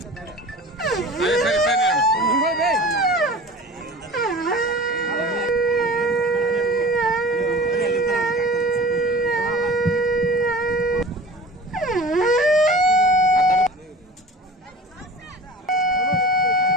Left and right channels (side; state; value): both; normal; correlation 0.40